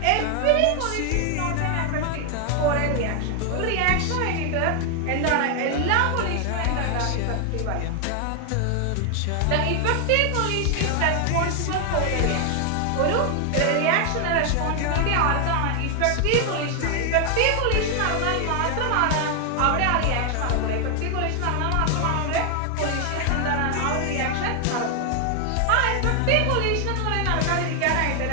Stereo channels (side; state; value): both; different; correlation 0.00